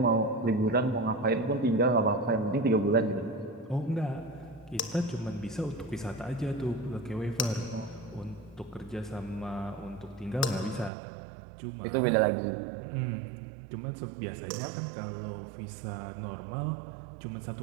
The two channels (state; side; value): drops out; left; at 10.9 s